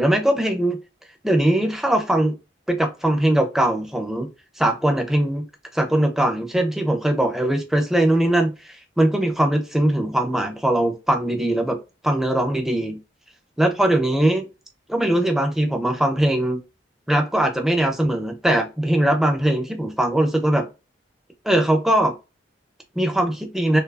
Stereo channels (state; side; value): normal; both; correlation 0.86